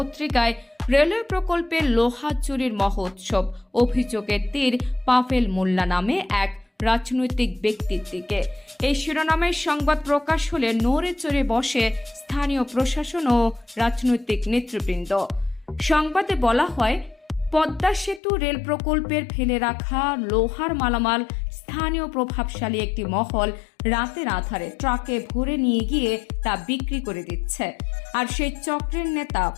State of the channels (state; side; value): drops out; right; at 18.2 s